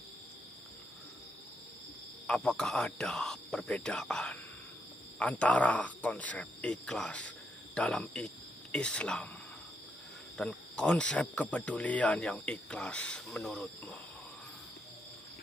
Apakah ada perbedaan antara konsep ikhlas dalam Islam dan konsep kepedulian yang ikhlas menurutmu?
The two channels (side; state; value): both; normal; correlation 0.79